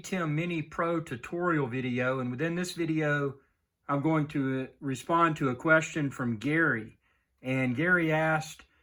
Mini Pro tutorial video. And within this video, I'm going to respond to a question from Gary. And Gary asked,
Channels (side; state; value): both; identical; correlation 1.00